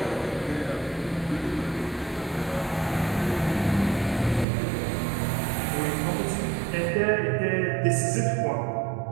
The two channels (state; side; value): drops out; left; at 4.5 s